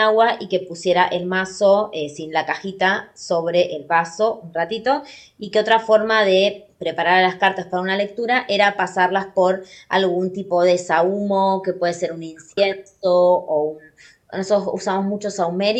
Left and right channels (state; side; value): identical; both; correlation 1.00